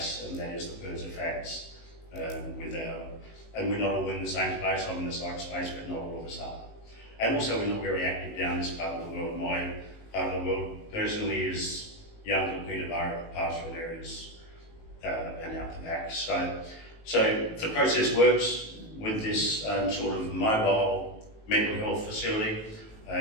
and that is the PIRSA facts and we're not all in the same space. I'm in the psych space, but not all of us are. And also we're not very active down this part of the world. My part of the world personally is Young Peterborough, pastoral areas, and out the back. So the process works with this sort of mobile mental health facility,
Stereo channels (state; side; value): late; right; 18 ms